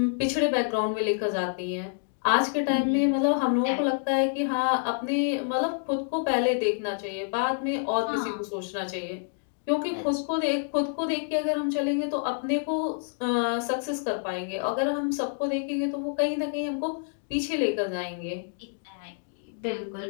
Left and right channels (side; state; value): right; silent; digital silence